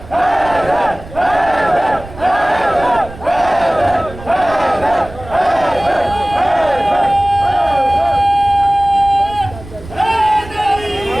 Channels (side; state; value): right; noise; rumble, 16 dB below the sound